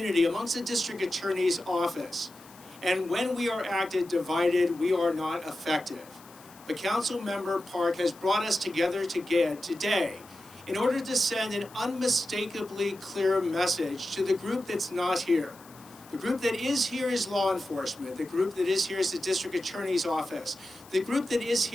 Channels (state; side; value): noise; left; hiss, 23 dB below the sound